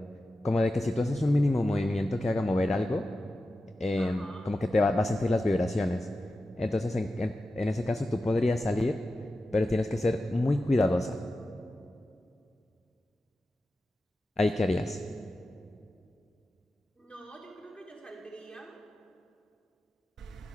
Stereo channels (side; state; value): both; normal; correlation 0.92